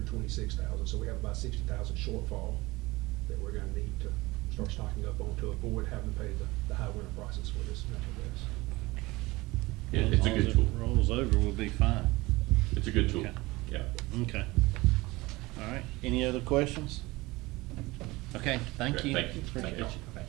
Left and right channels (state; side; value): quieter; left; 21.3 dB